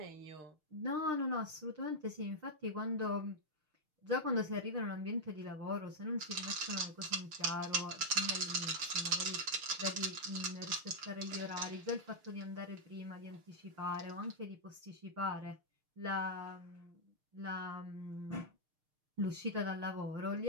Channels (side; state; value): left; late; 6.5 ms